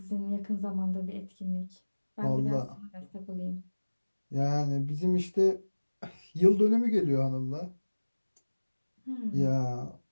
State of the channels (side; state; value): both; inverted; correlation -1.00